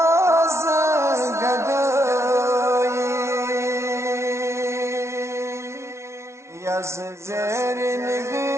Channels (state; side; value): late; left; 0.13 ms